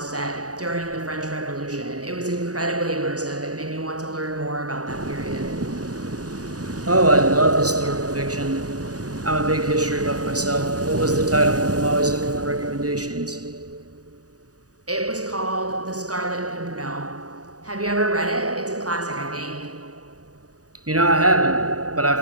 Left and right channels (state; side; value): late; left; 0.67 ms